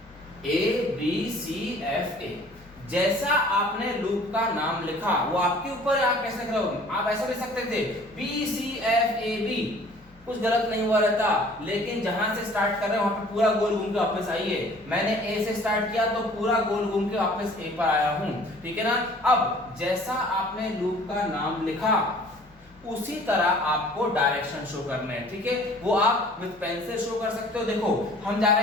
A B C F A, जैसा आपने लूप का नाम लिखा वो आपके ऊपर, आप कैसे लिख रहे हो, आप ऐसा लिख सकते थे B C F A B, कुछ गलत नहीं हुआ रहता, लेकिन जहां से स्टार्ट कर रहे हैं वहां पे पूरा गोल घूम के वापस आइए। मैंने A से स्टार्ट किया तो पूरा गोल घूम के वापस A पर आया हूं, ठीक है ना। अब जैसा आपने लूप का नाम लिखा उसी तरह आपको डायरेक्शन शो करने हैं, ठीक है, वो आप विद पेंसिल शो कर सकते हो। देखो हम जा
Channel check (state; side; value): normal; both; correlation 0.51